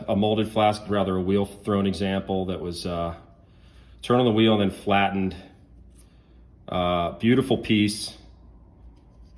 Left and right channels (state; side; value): identical; both; correlation 1.00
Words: molded flask, rather a wheel thrown example that was turned on the wheel and then flattened. Beautiful piece,